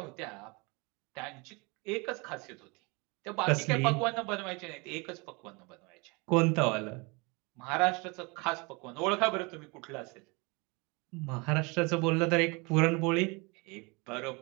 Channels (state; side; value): quieter; left; 28.4 dB